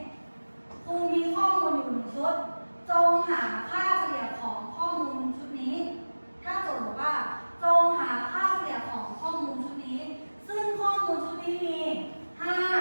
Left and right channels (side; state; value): both; inverted; correlation -1.00